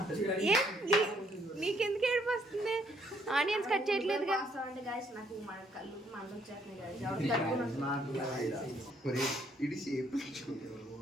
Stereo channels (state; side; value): normal; both; correlation 0.68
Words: నీకెందుకు ఏడుపు వస్తుంది? Onions cut చేయట్లేదుగా.